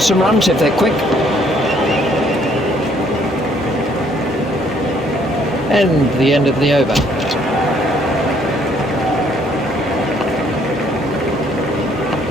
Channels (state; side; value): normal; both; correlation 0.65